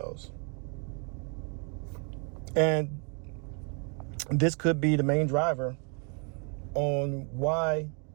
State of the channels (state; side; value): quieter; left; 37.8 dB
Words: And this could be the main driver on why